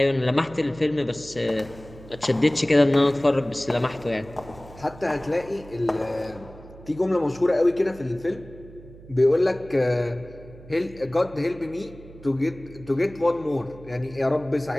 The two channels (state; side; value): noise; right; hum, 19 dB below the sound